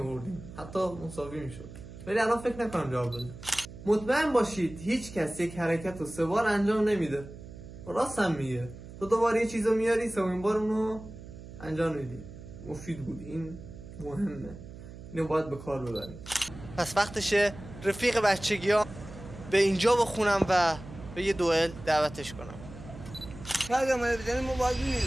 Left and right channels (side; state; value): right; noise; hum, 14 dB below the sound